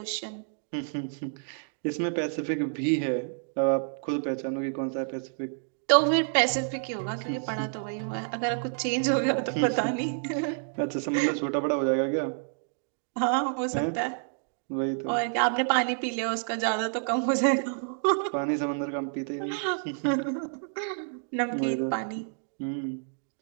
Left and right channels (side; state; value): left; silent; digital silence